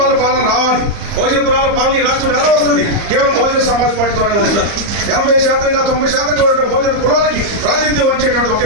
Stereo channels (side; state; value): left; late; 34 ms